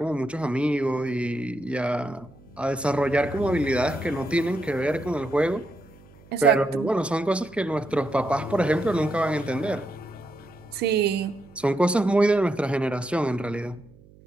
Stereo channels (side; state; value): right; noise; hum, 25 dB below the sound